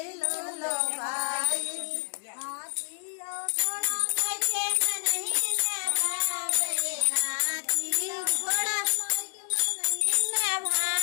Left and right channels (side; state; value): right; silent; digital silence